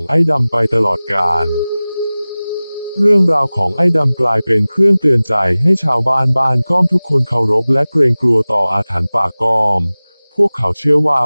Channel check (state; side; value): inverted; both; correlation -0.98